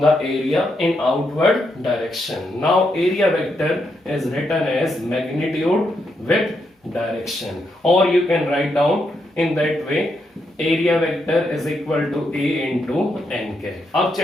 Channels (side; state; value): both; normal; correlation 0.80